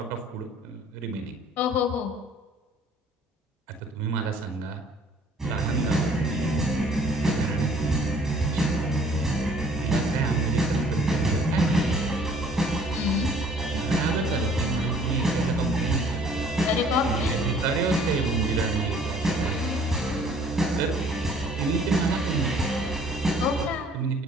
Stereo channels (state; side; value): normal; both; correlation 0.56